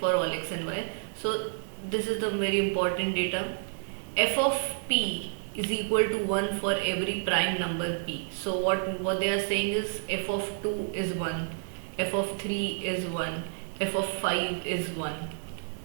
all x and y. So this is the very important data. F of p is equal to 1 for every prime number p. So what they are saying is f of 2 is 1, f of 3 is 1, f of 5 is 1.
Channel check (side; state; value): left; silent; digital silence